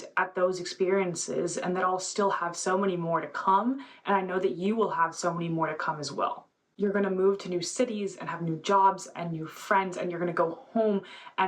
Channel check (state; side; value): identical; both; correlation 1.00